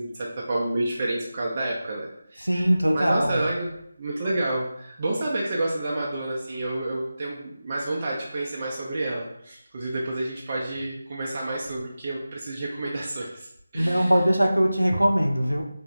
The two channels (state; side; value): inverted; both; correlation -0.94